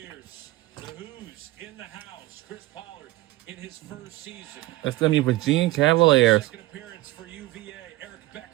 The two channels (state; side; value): quieter; left; 18.9 dB